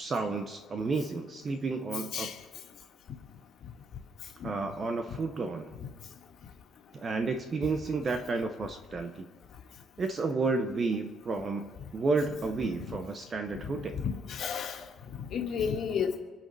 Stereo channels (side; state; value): both; normal; correlation 0.72